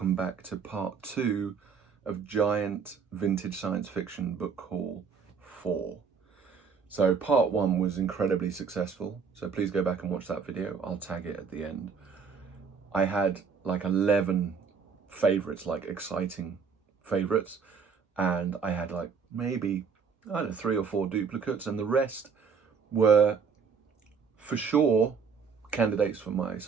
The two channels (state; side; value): quieter; left; 5.9 dB